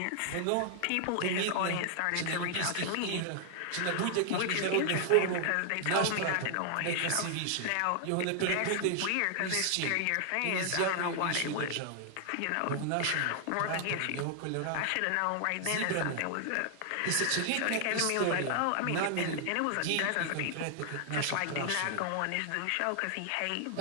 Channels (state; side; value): different; both; correlation 0.00